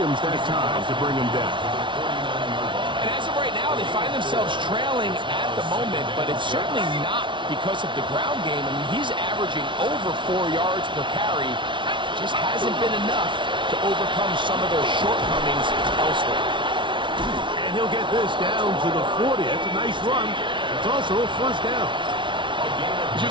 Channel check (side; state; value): left; late; 0.24 ms